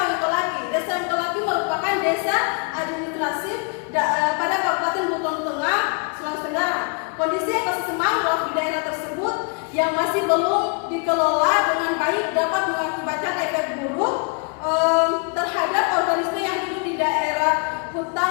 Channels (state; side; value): quieter; right; 37.1 dB